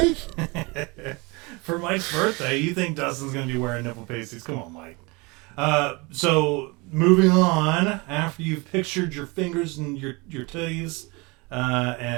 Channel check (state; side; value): quieter; left; 26.8 dB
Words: For Mike's birthday, you think Dustin's going to be wearing nipple pasties? Come on, Mike. So moving on, after you've pictured your fingers and your titties,